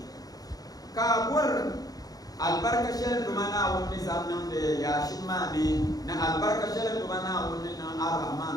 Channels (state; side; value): late; right; 0.18 ms